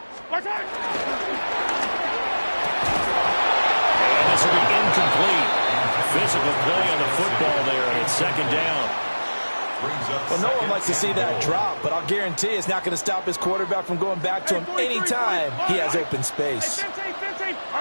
Watch out. And this will be incomplete. Physical play on the football there, and it's second down. Well, no one likes to see that drop, but I'll guarantee it's not going to stop his quarterback from going back to him anytime he has open space. And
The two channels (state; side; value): inverted; both; correlation -1.00